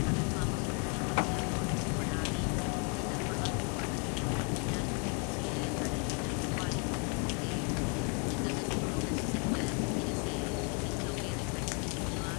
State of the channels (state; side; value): quieter; right; 36.3 dB